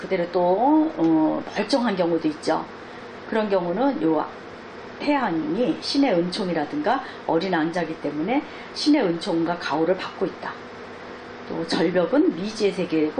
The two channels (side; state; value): both; identical; correlation 1.00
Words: 또 멀쩡한 경우도 있죠. 그런 경우는 요 태양이 신의 은총이라든가 어린 왕자이기 때문에 신의 은총과 가호를 받고 있다. 또 절벽은 미지의